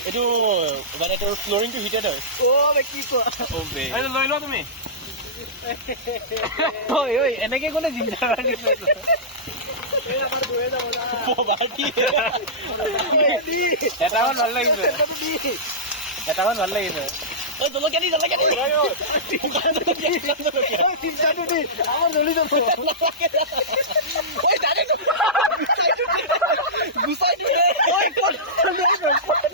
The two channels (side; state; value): both; normal; correlation -0.17